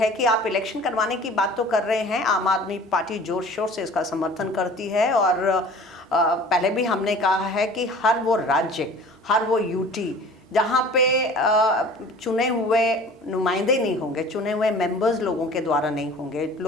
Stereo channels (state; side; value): normal; both; correlation 0.45